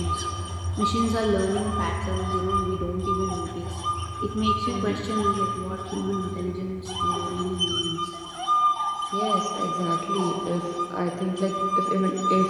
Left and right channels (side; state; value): both; identical; correlation 1.00